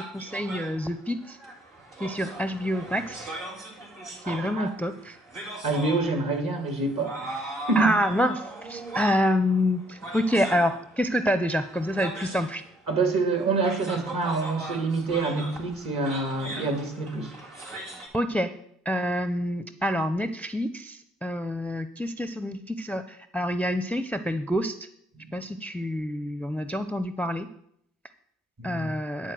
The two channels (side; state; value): both; normal; correlation 0.68